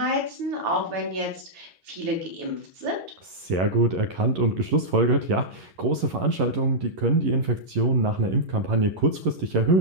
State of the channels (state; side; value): late; left; 11 ms